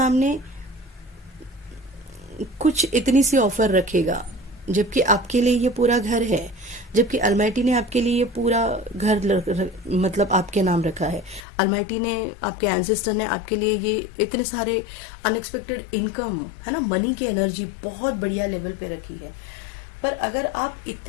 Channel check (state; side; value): drops out; right; at 11.5 s